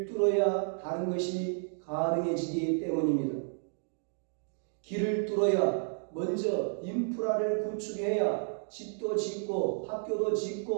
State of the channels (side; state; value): left; silent; digital silence